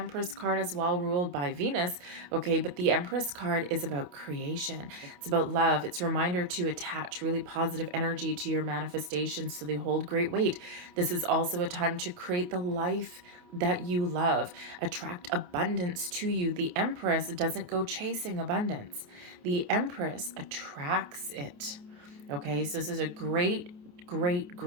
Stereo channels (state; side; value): late; left; 28 ms